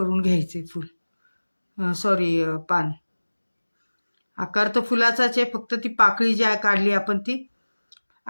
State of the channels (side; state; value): both; inverted; correlation -1.00